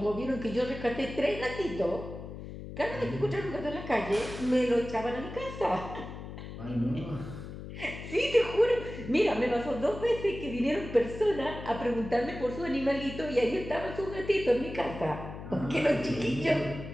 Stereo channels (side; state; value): left; noise; hum, 10 dB below the sound